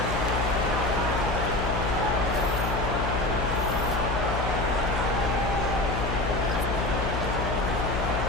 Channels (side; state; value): left; noise; hum, 2 dB below the sound